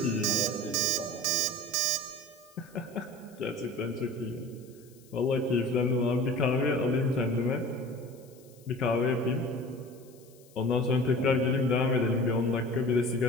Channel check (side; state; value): left; noise; hiss, 27 dB below the sound